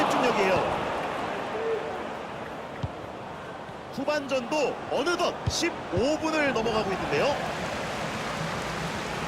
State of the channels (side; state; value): both; identical; correlation 1.00